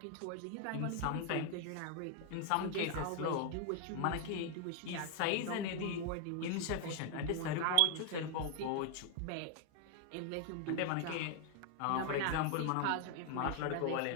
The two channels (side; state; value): both; different; correlation 0.00